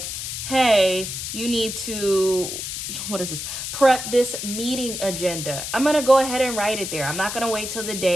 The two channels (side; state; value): left; noise; hiss, 5 dB below the sound